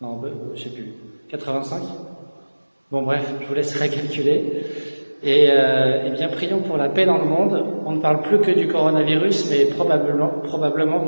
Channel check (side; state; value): both; inverted; correlation -1.00